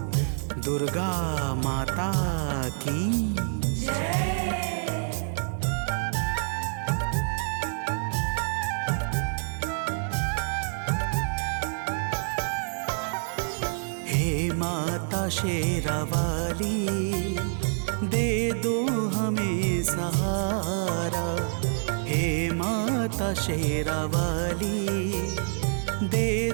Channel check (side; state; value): left; silent; 60 dB below the other